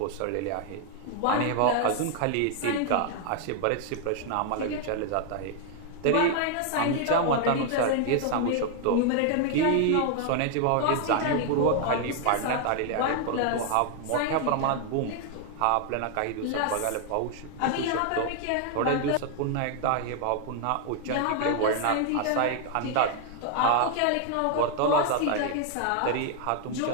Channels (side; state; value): both; different; correlation 0.00